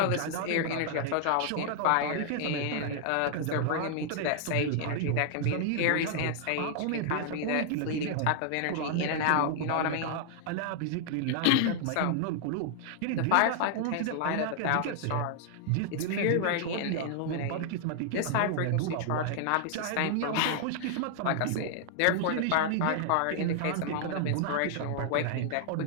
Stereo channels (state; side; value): different; both; correlation -0.01